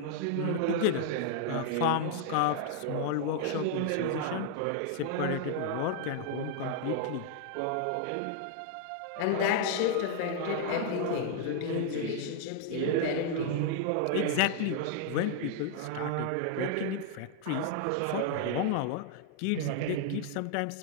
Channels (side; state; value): both; different; correlation -0.01